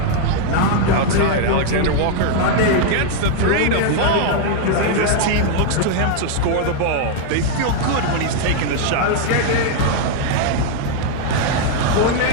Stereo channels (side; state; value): both; different; correlation 0.00